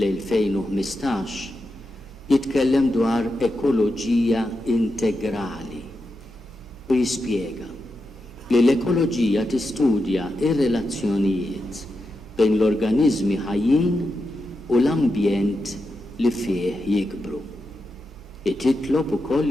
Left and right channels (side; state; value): right; noise; hum, 21 dB below the sound